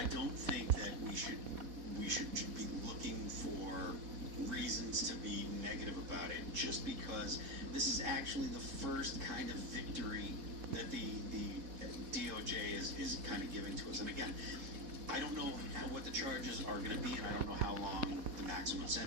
don't think that we should be looking for reasons to be negative about it, just because this is actually the first kind of victory that the DOJ is kind of giving to us. And again, I don't know what the charges are going to be, and I don't know how long the maximum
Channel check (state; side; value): late; left; 4.1 ms